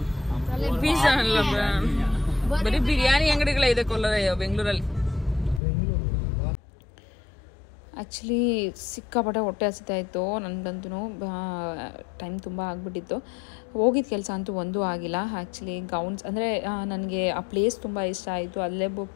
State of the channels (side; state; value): right; drops out; at 5.6 s